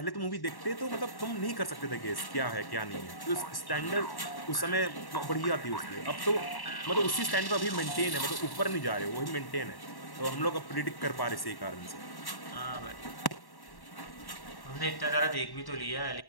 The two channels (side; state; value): right; late; 1.1 ms